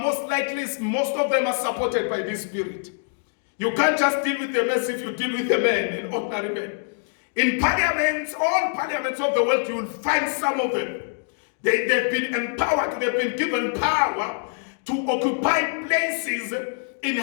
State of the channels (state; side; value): silent; right; digital silence